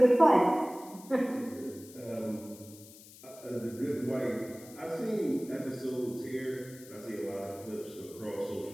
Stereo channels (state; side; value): noise; left; hiss, 20 dB below the sound